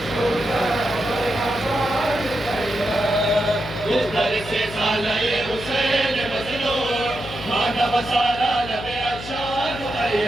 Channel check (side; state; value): left; noise; hum, 12 dB below the sound